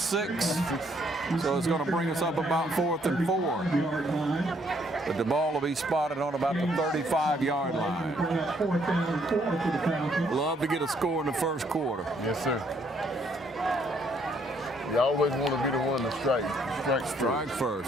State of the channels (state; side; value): normal; both; correlation 0.68